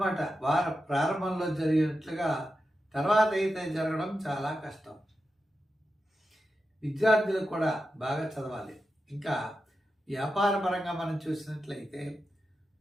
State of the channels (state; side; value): normal; both; correlation 0.90